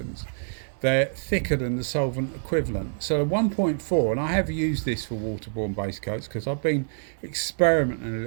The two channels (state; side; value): silent; left; digital silence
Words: they're thicker than the solvent equivalent. So the 1.4, and I have used this for waterborne base coats because I've been experimenting a